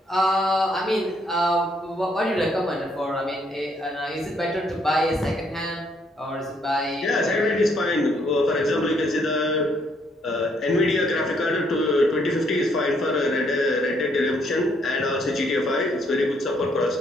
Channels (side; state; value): both; normal; correlation 0.70